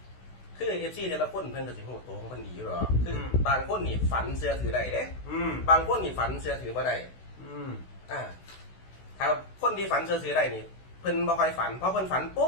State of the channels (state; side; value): late; right; 16 ms